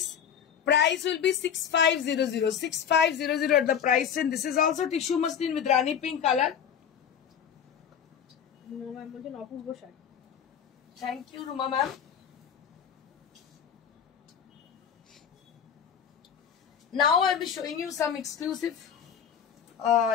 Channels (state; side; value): quieter; right; 8.1 dB